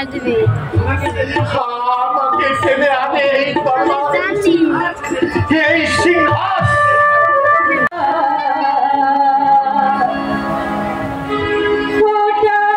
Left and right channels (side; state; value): both; identical; correlation 1.00